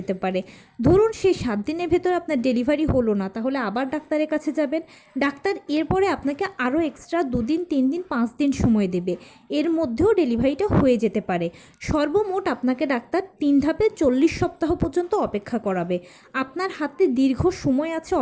পারে। ধরুন সেই 7 দিনের ভেতরে আপনার ডেলিভারি হলো না, তাহলে আবার ডাক্তারের কাছে যাবেন। ডাক্তার এরপরে আপনাকে আরও এক্সট্রা 2 দিন 3 দিন 5 দিন সময় দেবে, এর মধ্যেও ডেলিভারিটা হয়ে যেতে পারে। সর্বমোট আপনাকে ডাক্তার 3 ধাপে 40 সপ্তাহ পর্যন্ত অপেক্ষা করাবে। আপনার হাতে দীর্ঘ সময় আছে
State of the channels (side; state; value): both; identical; correlation 1.00